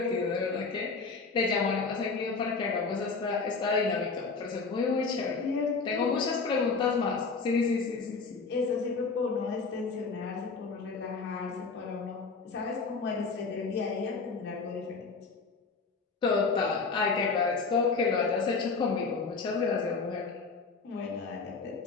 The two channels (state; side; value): quieter; right; 4.5 dB